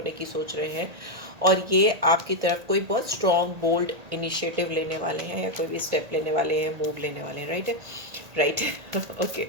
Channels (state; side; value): late; left; 1.8 ms